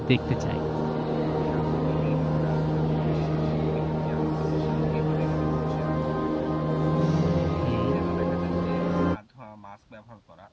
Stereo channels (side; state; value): both; identical; correlation 1.00